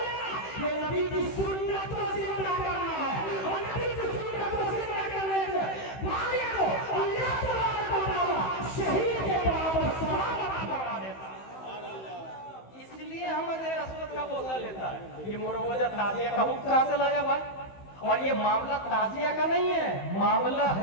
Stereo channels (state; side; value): late; right; 16 ms